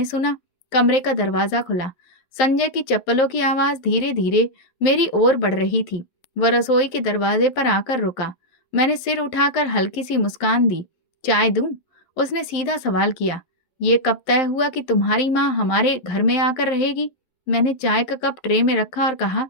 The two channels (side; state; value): right; late; 11 ms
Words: सुना, कमरे का दरवाजा खुला। संजय की चप्पलों की आवाज धीरे धीरे मेरी ओर बढ़ रही थी। वह रसोई के दरवाजे पर आकर रुका। मैंने सिर उठाकर हल्की सी मुस्कान दी। चाय दूं? उसने सीधा सवाल किया, ये कब तय हुआ कि तुम्हारी माँ हमारे घर में आकर रहेगी? मैंने चाय का कप ट्रे में रखा और कहा,